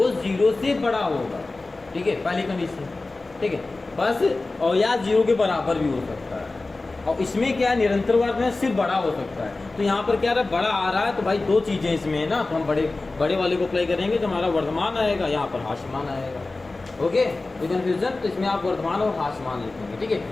0 से बड़ा होगा, ठीक है, पहली कंडीशन, ठीक है, बस, और या 0 के बराबर भी हो सकता है, और इसमें क्या है, निरंतर वर्ग में सिर्फ बड़ा हो सकता है, तो यहाँ पर क्या रहा, बड़ा आ रहा है, तो भाई 2 चीज़ें इसमें है ना, तो हम बड़े वाले को अप्लाई करेंगे तो हमारा वर्धमान आएगा, यहाँ पर हास्यमान आएगा, ओके, ये कन्फ्यूजन, तो इसमें आप वर्धमान और हास्यमान लिखेंगे, ठीक है,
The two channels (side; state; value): right; quieter; 3.3 dB